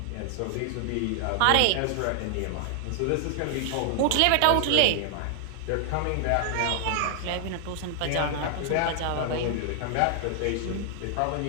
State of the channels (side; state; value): both; different; correlation 0.00